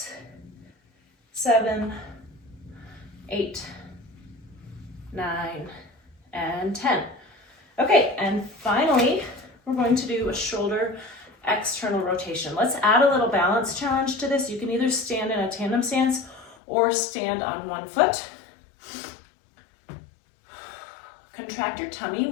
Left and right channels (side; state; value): right; drops out; at 16.6 s